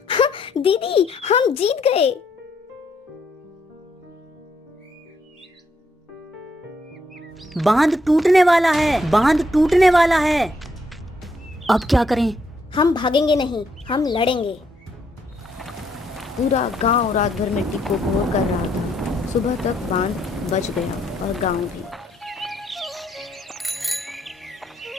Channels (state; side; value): normal; both; correlation 0.73